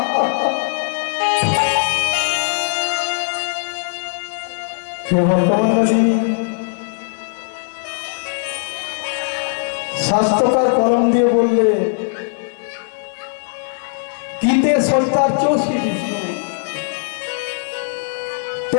স্বাস্থ্যকার কলম দিয়ে বললে, গীতে সত্তার চৌষি বিষ্ণু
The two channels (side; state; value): right; silent; 60 dB below the other